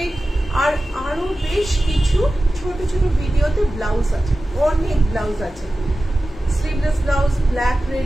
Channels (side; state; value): both; normal; correlation 0.95